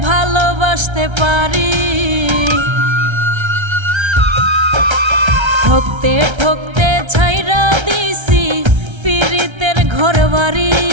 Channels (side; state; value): left; late; 1.3 ms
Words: ভালোবাসতে পারি, ঠকতে ঠকতে ছাইরা দিছি পীড়িতের ঘর বাড়ি।